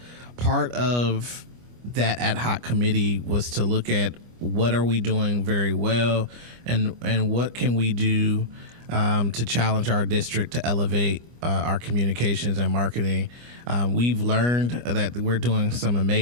part of that ad hoc committee was to look at what are we doing very well and what can we do to challenge our district to elevate our communications and marketing. We've learned that we're doing some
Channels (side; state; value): left; late; 25 ms